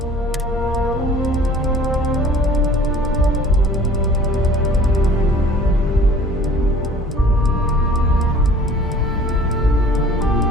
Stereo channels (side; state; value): both; normal; correlation 0.49